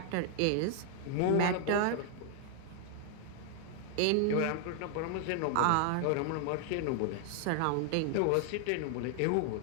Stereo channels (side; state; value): both; different; correlation 0.00